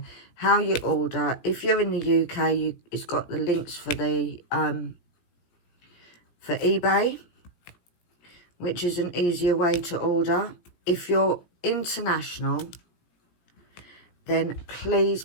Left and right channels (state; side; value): late; right; 17 ms